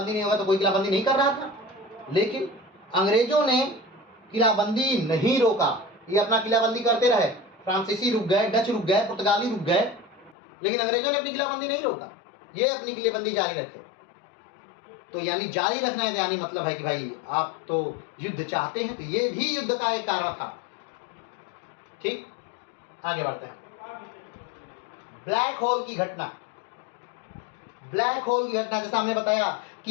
नहीं होगा तो कोई किलाबंदी नहीं कर रहा था, लेकिन अंग्रेजों ने किलाबंदी नहीं रोका, ये अपना किलाबंदी करते रहे। फ्रांसीसी रुक गए, डच रुक गए, पुर्तगाली रुक गए, लेकिन अंग्रेजों ने अपनी किलाबंदी नहीं रोका, ये अपनी किलाबंदी जारी रखे। तो यानी जारी रखना है, यानी मतलब है कि भाई आप तो युद्ध चाहते हैं, तो ये भी युद्ध का एक कारण था। ठीक, आगे बढ़ते हैं। ब्लैक होल की घटना। ब्लैक होल की घटना, जैसा हमने बताया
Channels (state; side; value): drops out; right; at 10.4 s